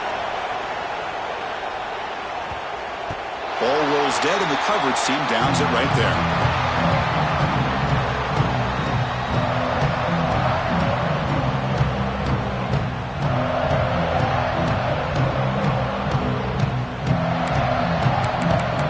Ball rolls dead, and the coverage team downs it right there.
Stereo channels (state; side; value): identical; both; correlation 1.00